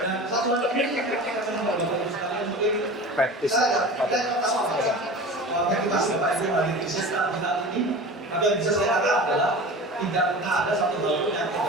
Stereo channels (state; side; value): normal; both; correlation 0.35